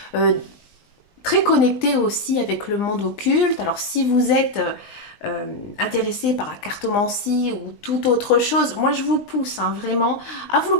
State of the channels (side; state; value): right; late; 20 ms